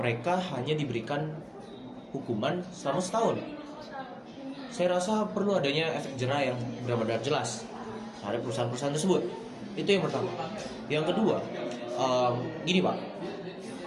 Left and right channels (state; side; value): identical; both; correlation 1.00